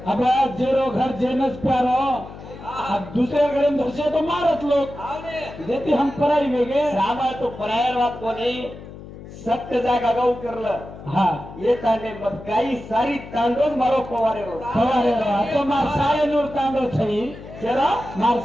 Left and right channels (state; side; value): noise; left; hum, 15 dB below the sound